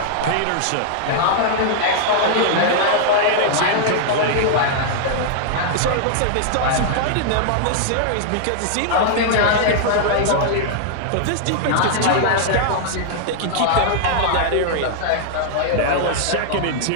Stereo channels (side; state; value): both; different; correlation -0.01